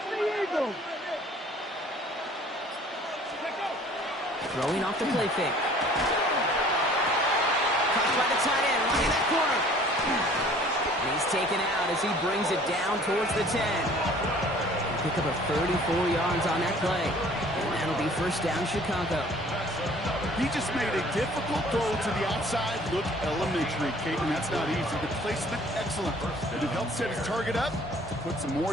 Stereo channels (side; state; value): both; normal; correlation 0.52